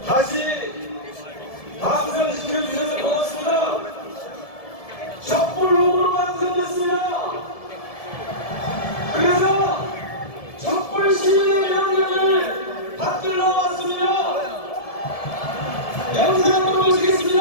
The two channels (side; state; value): right; late; 1.7 ms